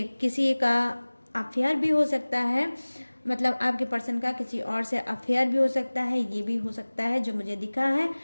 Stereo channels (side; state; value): both; inverted; correlation -1.00